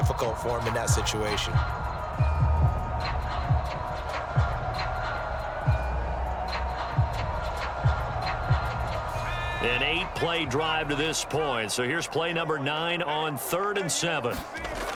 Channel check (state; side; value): identical; both; correlation 1.00